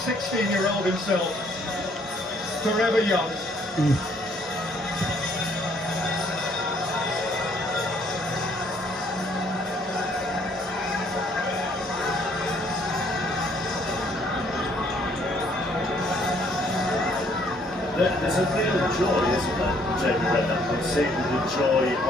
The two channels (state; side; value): normal; both; correlation 0.65